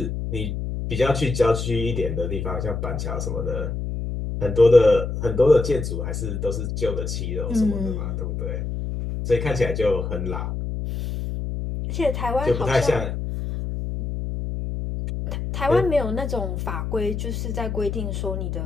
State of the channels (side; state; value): left; noise; hum, 4 dB below the sound